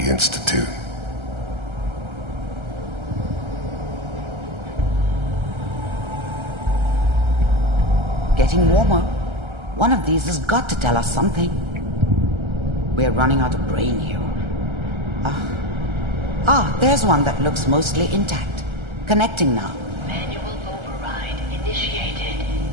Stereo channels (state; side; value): late; left; 1.3 ms